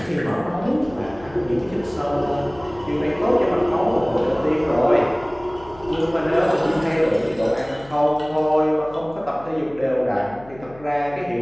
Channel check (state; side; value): noise; left; hum, 22 dB below the sound